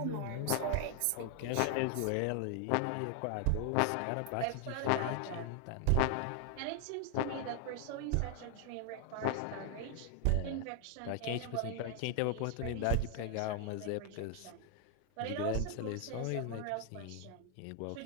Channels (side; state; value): both; different; correlation 0.00